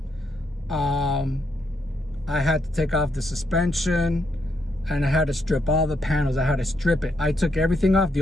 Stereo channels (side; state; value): both; normal; correlation 0.78